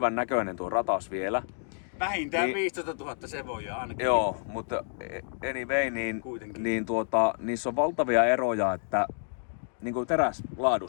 näköinen tuo ratas vielä. Vähintään 15 000 se voi jo ainakin. Joo, mutta anyway, niin niissä on valtavia eroja, että niin kuin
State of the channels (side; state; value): right; silent; digital silence